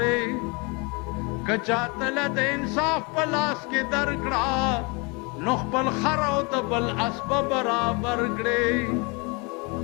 کچا تل د انصاف په لاس کې درکړه نو خپل خر او د بل اسب برابر کړي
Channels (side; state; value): right; quieter; 30.0 dB